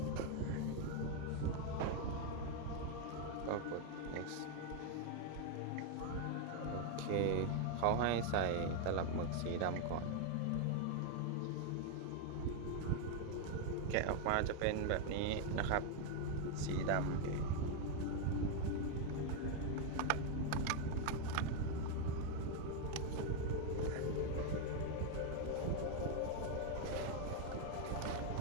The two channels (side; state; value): both; different; correlation 0.01